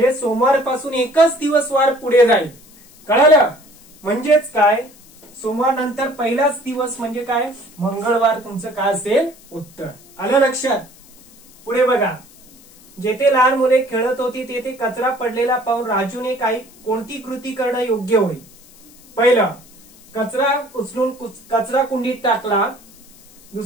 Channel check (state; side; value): noise; left; hiss, 25 dB below the sound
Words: सोमवारपासून एकच दिवस वार पुढे जाईल, कळलं? म्हणजेच काय, सोमवार नंतर पहिलाच दिवस म्हणजे काय, मंगळवार तुमचं काय असेल, उत्तर. आलं लक्षात? पुढे बघा, जेथे लहान मुले खेळत होती तेथे कचरा पडलेला पाहून राजूने कोणती कृती करणं योग्य होईल? पहिलं, कचरा उचलून कचरा कुंडीत टाकला.